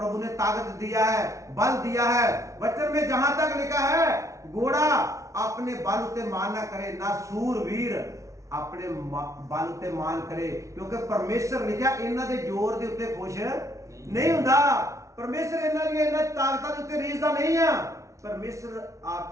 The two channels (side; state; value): left; late; 0.15 ms